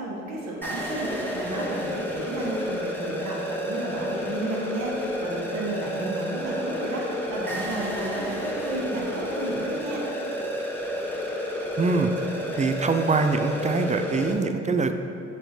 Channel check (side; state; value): both; normal; correlation 0.49